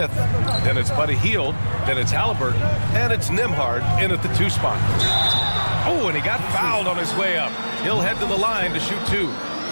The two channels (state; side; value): inverted; both; correlation -1.00